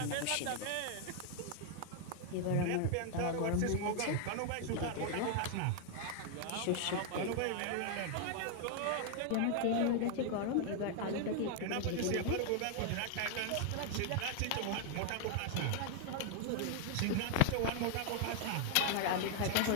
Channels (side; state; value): both; different; correlation 0.00